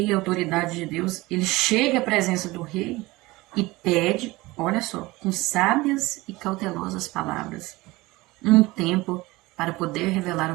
e autoridade de Deus, ele chega à presença do rei e pede, olha só, com sábias e cautelosas palavras, um tempo para poder revelar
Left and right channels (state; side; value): quieter; left; 20.8 dB